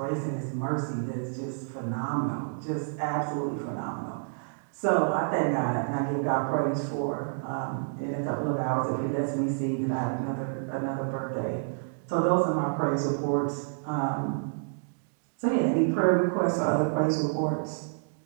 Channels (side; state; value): left; silent; digital silence